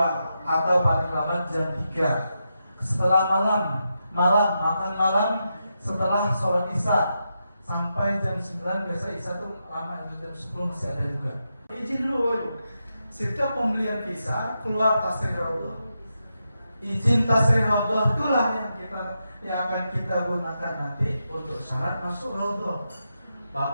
atau paling lambat jam 3. Setelah makan malam setelah sholat isya sampai jam 9, biasa isya tuh lama, jam 10 masih ada juga. Izin dulu, setiap pembelian visa keluar tasrih raudhah. Izin tasrih raudhah itulah yang akan kita gunakan nanti untuk syarat masuk raudhah.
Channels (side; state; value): both; inverted; correlation -0.86